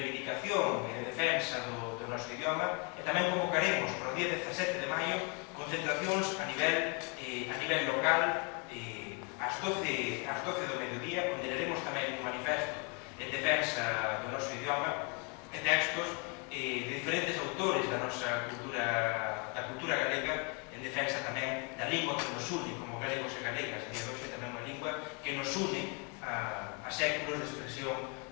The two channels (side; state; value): right; quieter; 34.6 dB